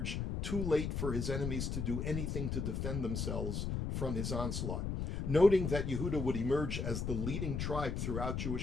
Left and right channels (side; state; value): left; noise; rumble, 2 dB below the sound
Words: too late for his enemies to do anything to defend themselves from his onslaught. Noting that Yehuda would emerge as the leading tribe throughout